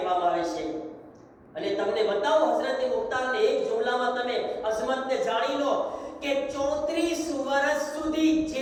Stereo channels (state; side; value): identical; both; correlation 1.00